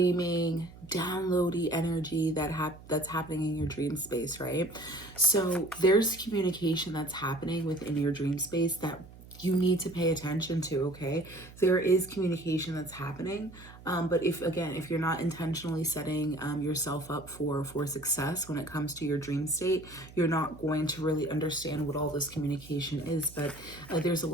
downloady energy that's happening in your dream space, right? So there's communication that's happening within your dream space that you need to pay attention to, okay? There is communication that's happening, but if you're not intentionally setting yourself up for success when it comes to your dream state, you're not going to really understand what all this communication is. But there's a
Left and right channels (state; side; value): noise; right; hum, 19 dB below the sound